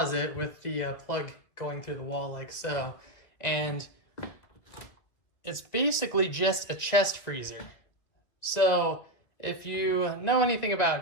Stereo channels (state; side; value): late; right; 1.9 ms